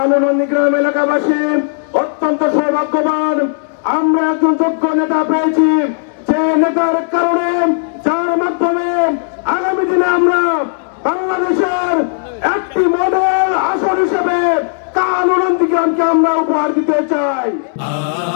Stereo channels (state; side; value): silent; right; digital silence